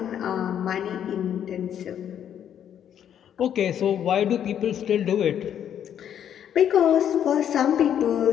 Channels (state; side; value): quieter; right; 9.5 dB